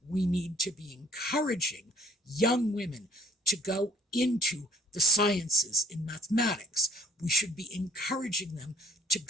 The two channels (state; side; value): normal; both; correlation 0.57